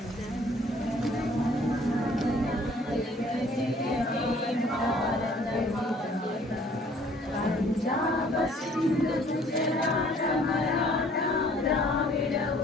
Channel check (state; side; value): normal; both; correlation 0.57